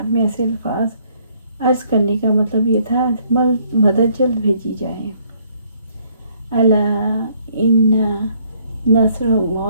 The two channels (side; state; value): both; inverted; correlation -0.66